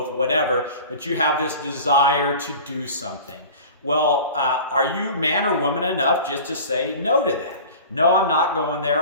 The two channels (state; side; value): inverted; both; correlation -0.39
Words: whatever. But you have this desire to do something. Well, are you man or woman enough just to say no to that? No, I'm not going